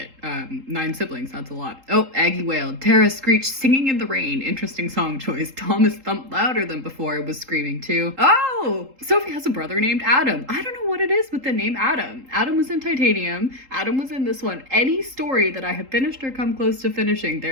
9 siblings, that's a lot. Oh, Aggie wailed. Tara screeched, singing in the rain. Interesting song choice. Thomas thumped louder than before, was screaming too. Oh, Sophie has a brother named Adam. I don't know what it is with the name Adam. Adam was in Titanium. Adam was in this one. Any story that I have finished or come close to finishing,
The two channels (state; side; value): late; left; 3.8 ms